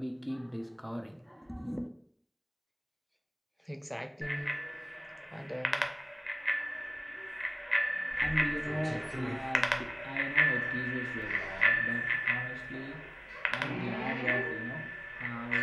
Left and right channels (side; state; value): both; identical; correlation 1.00